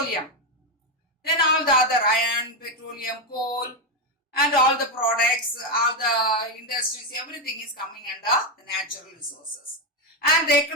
Then all the other iron, petroleum, coal, and all the products, all the industries, everything is coming under the natural resources. And the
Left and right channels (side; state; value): both; normal; correlation 0.06